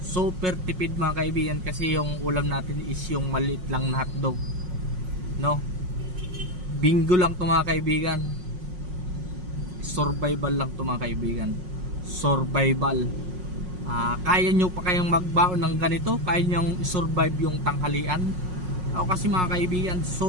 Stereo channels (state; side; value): late; left; 5.5 ms